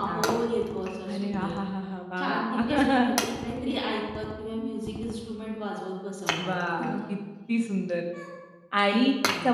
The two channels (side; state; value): both; identical; correlation 1.00